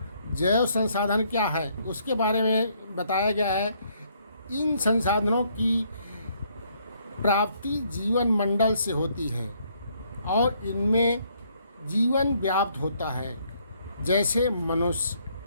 जैव संसाधन क्या है उसके बारे में बताया गया है। इन संसाधनों की प्राप्ति जीवन मंडल से होती है और इनमें जीवन व्याप्त होता है, जैसे मनुष्य,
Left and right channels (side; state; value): both; inverted; correlation -0.69